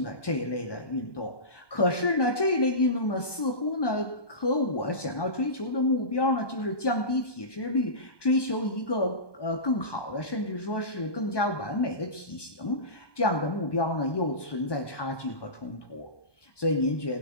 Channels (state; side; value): late; right; 1.2 ms